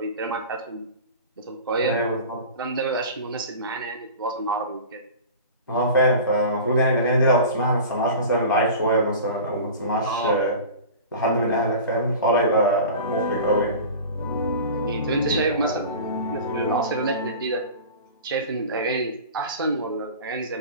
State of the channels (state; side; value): inverted; both; correlation -0.36